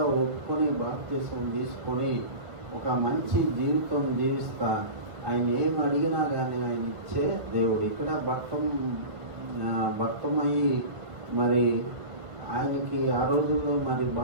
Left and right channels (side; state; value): left; late; 1.5 ms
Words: ఒప్పుకొని బాప్తిసం తీసుకొని ఒక మంచి జీవితం జీవిస్తా ఆయన ఏం అడిగినా కానీ ఆయన ఇచ్చే దేవుడు. ఇక్కడ భక్తమయ్యి మరి ఆయనకి ఆ రోజుల్లో మరి